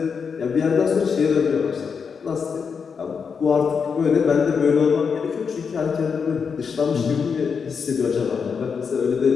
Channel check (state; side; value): quieter; right; 6.0 dB